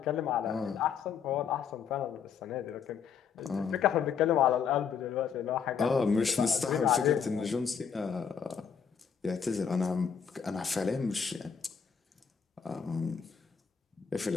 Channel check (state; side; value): quieter; right; 6.8 dB